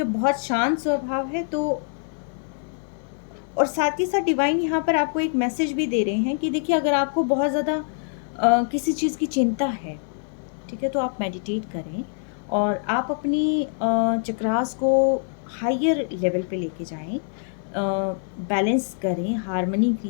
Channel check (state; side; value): silent; right; 62 dB below the other